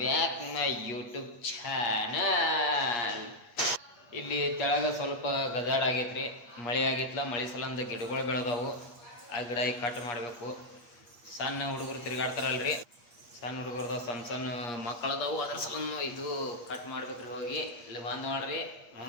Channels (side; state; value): right; late; 8.5 ms